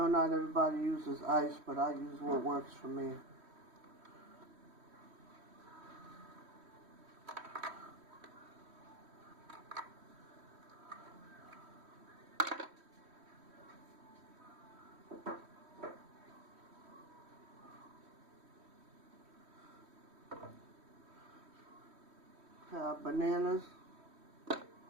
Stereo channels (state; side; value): late; left; 3.1 ms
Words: not everybody uses ice, but I use what works for me. Have bananas.